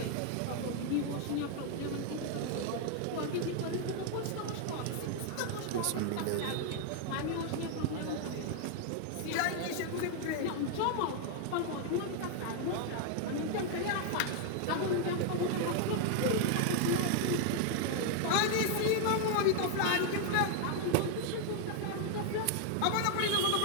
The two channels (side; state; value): both; different; correlation 0.00